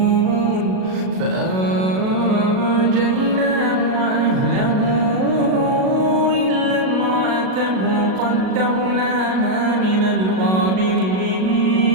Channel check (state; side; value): late; left; 37 ms